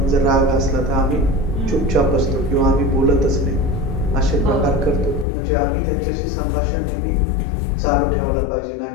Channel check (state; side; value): drops out; right; at 5.2 s